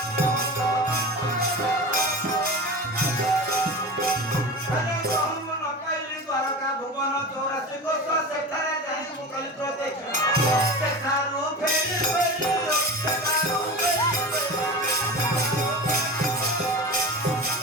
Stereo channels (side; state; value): both; normal; correlation 0.30